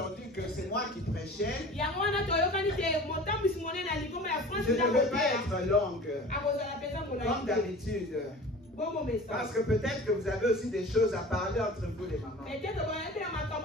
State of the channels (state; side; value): normal; both; correlation 0.40